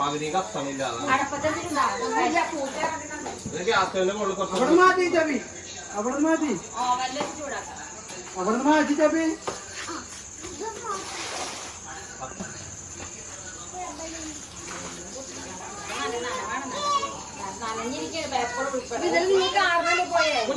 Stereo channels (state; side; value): identical; both; correlation 1.00